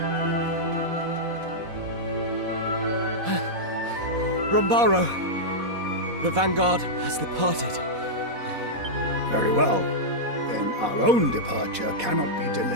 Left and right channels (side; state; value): left; late; 4.1 ms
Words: Rombaro, the Vanguard has departed. Very well. Then our own departure cannot be